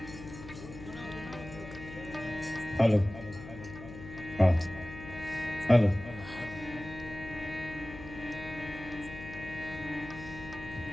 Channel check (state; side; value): noise; left; hum, 13 dB below the sound